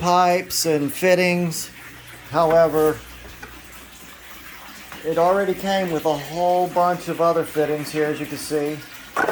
and fittings. However, it already came with a whole bunch of other fittings here, as you can see.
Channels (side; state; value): both; identical; correlation 1.00